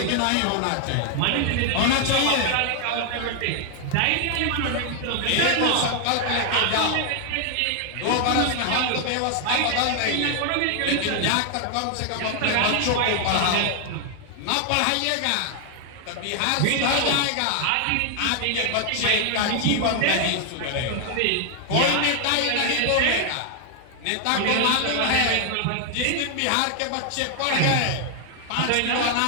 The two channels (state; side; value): different; both; correlation 0.00